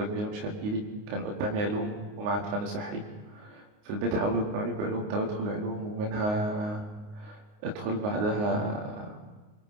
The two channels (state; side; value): late; left; 29 ms